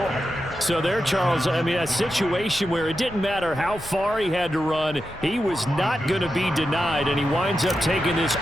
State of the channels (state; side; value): normal; both; correlation 0.89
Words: So there, Charles, I mean, a situation where it didn't matter how far he had to run, he was not going to be denied, and he winds up taking this